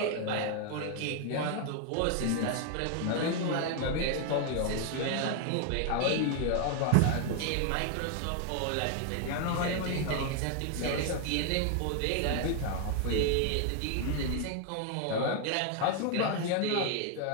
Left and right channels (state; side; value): different; both; correlation 0.00